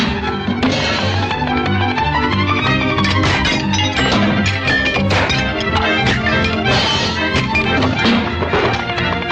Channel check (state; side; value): identical; both; correlation 1.00